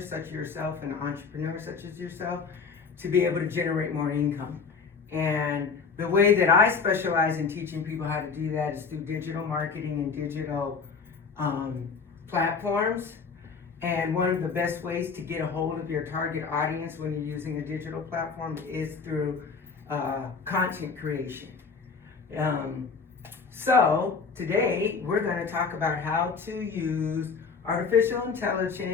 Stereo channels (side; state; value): right; quieter; 5.2 dB